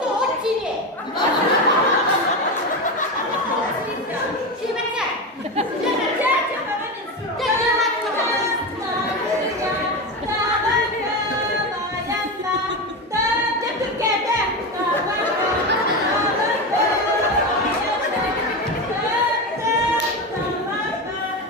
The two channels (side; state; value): both; normal; correlation 0.18